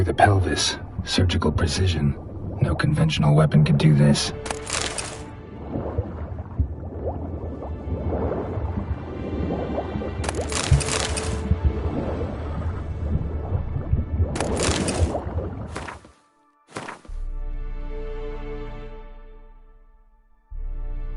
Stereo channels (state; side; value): identical; both; correlation 1.00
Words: the pelvis. Surgical precision. No conventional weapon could do this.